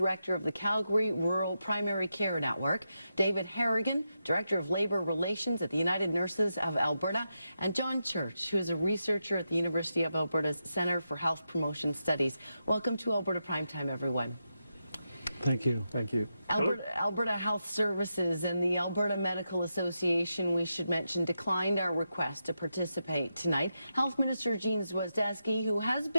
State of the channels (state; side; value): inverted; both; correlation -0.86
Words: of the Calgary Rural Primary Care Network, David Harrigan, Director of Labour Relations at the United Nurses of Alberta, and John Church, who is a researcher at the University of Alberta's Centre for Health Promotion Studies. Welcome to Alberta Primetime, everyone. Thank you. Thank you. Alberta Health Services and the Alberta Medical Association, we should mention, declined our request to participate tonight. Health Minister Jean Swizdesky, who has